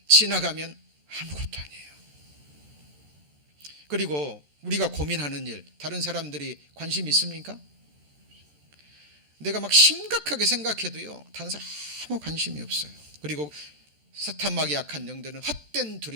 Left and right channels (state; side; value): late; left; 14 ms